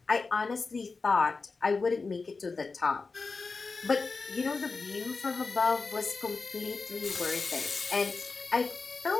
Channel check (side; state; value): right; quieter; 4.2 dB